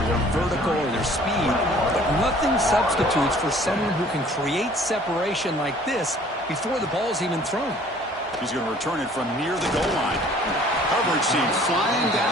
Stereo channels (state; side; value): normal; both; correlation 0.54